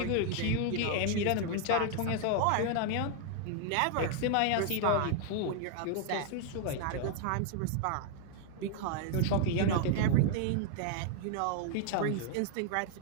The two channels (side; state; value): both; different; correlation 0.00